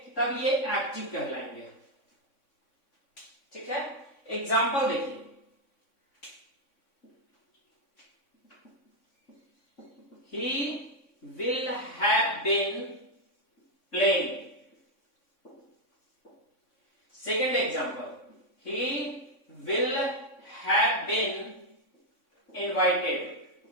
तब ये एक्टिव कहलाएंगे, ठीक है। एग्जाम्पल देखिए। He will have been playing. Second example. He will have been invited.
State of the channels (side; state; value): right; late; 3.6 ms